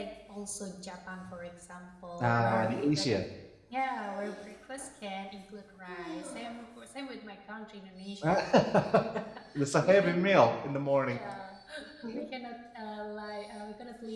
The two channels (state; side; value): identical; both; correlation 1.00